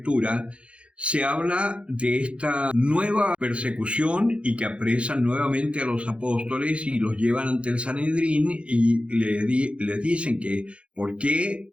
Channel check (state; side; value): late; left; 0.060 ms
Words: se habla de esta nueva persecución y que apresan nuevamente a los apóstoles y los llevan ante el Sanedrín y les dicen que por qué